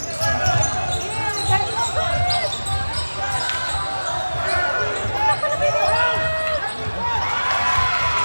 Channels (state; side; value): inverted; both; correlation -1.00